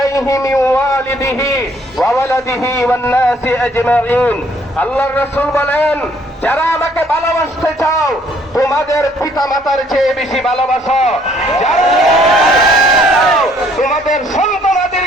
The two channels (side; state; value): both; normal; correlation 0.63